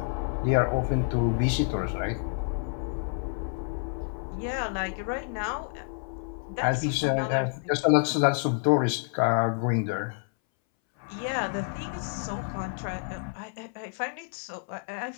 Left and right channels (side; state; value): right; silent; 59 dB below the other